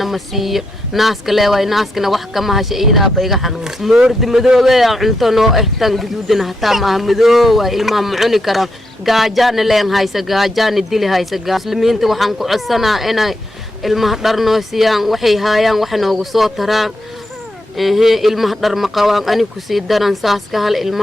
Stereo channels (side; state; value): both; normal; correlation 0.82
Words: ma siiyo naaska leeway naaskana wax kama hasha iidaa bayga xanuun moordi madoobe aan cunto noo tan guduudina hataa ma madoow waa ilmaha ma cuni karaan gaajana leen haysa gaajana dili haysa muslimiinta waxan ku codsanaa inay ilmaha dharnoo siiyaan waxay haayaan wax noogu soo taraan ilmaha dhar ma qabaan ani ku sii daran saas ka hal